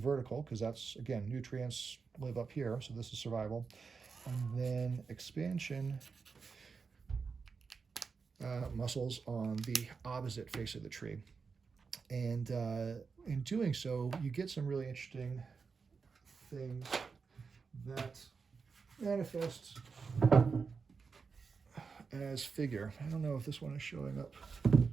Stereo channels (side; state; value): left; quieter; 5.1 dB